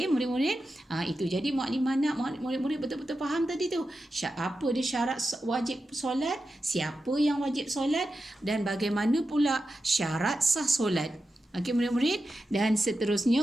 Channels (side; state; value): both; normal; correlation 0.90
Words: murid-murid, itu. Jadi Mukadimah nak murid-murid betul-betul faham tadi tu. Apa dia syarat wajib solat, siapa yang wajib solat, dan bagaimana pula syarat sah solat. Okey murid-murid, dan